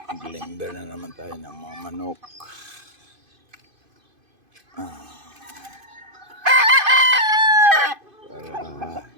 Glimber na naman tayo ng mga manok. Para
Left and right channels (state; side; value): late; left; 2.5 ms